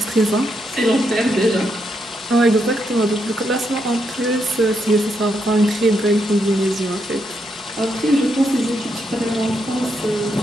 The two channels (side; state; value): both; normal; correlation 0.80